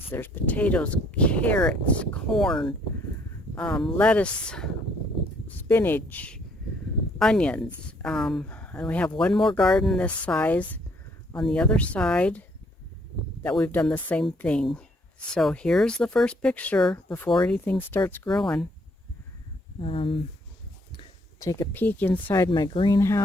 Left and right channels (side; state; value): both; normal; correlation 0.65